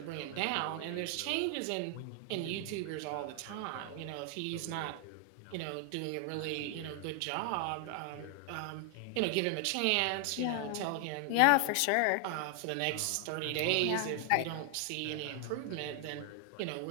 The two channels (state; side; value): different; both; correlation 0.00